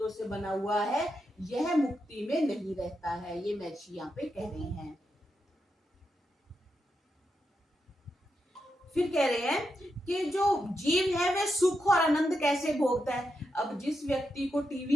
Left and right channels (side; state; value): both; normal; correlation 0.85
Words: से बना हुआ है, यह मुक्ति में नहीं रहता है, ये महर्षि यहाँ पे कह रहे हैं। फिर कह रहे हैं कि जो जीव है वह सुख और आनंद कैसे भोगता है? अब जिस व्यक्ति को